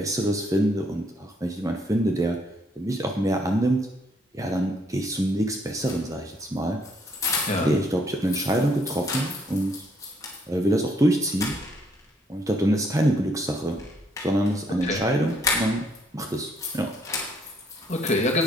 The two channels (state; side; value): normal; both; correlation 0.69